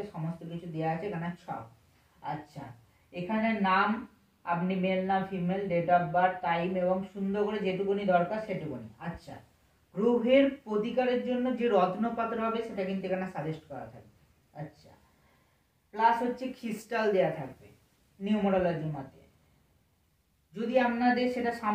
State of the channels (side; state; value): both; identical; correlation 1.00